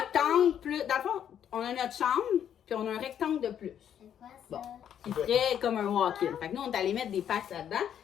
plus. Dans le fond, on a notre chambre, puis on a un rectangle de plus. Bon. Qui ferait comme un walk-in. Fait que nous, on est allé mettre des packs là-dedans,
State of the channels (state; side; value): quieter; right; 9.4 dB